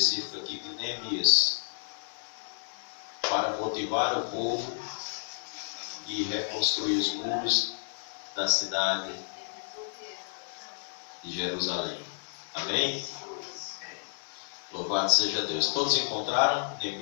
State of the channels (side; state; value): right; silent; digital silence